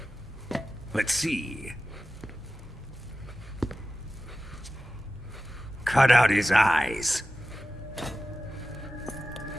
Let's see. Cut out his eyes.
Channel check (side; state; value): both; normal; correlation 0.95